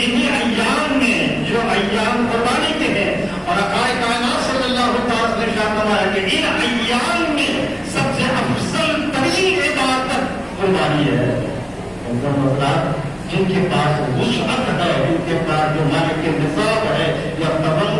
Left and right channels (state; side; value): identical; both; correlation 1.00